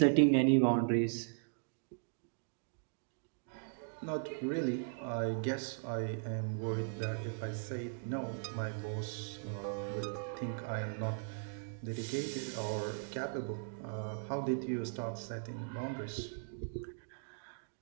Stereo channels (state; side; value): silent; left; digital silence